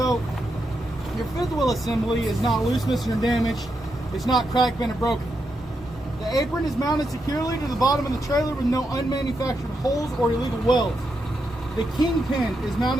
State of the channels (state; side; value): normal; both; correlation 0.84